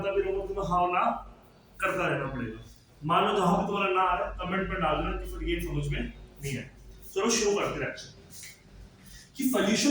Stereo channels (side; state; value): both; identical; correlation 1.00